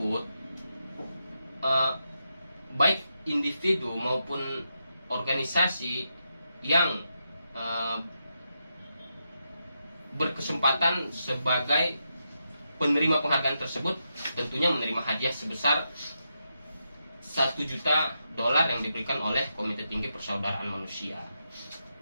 baik individu maupun organisasi yang berkesempatan sebagai penerima penghargaan tersebut tentunya menerima hadiah sebesar $1 juta yang diberikan oleh Komite Tinggi Persaudaraan Manusia.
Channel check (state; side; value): inverted; both; correlation -0.85